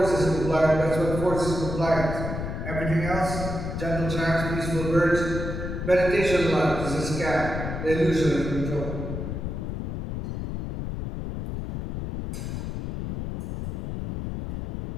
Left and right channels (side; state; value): left; noise; rumble, 5 dB below the sound